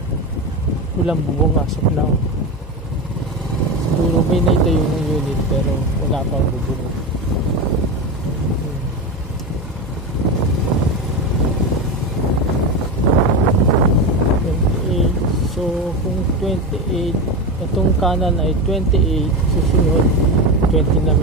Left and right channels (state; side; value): normal; both; correlation 0.20